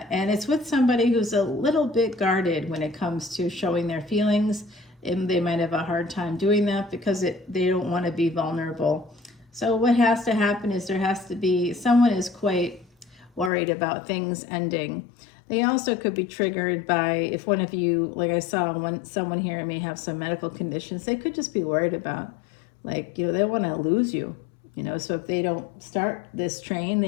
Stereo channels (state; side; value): drops out; right; at 13.5 s